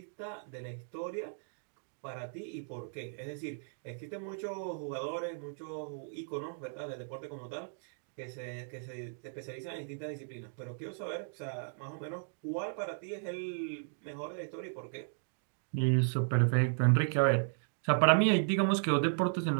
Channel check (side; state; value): left; silent; digital silence